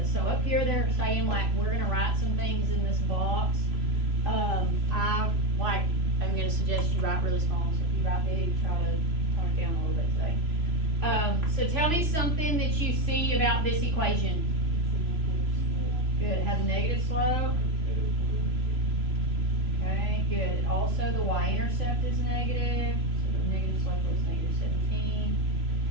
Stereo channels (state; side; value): late; left; 3.0 ms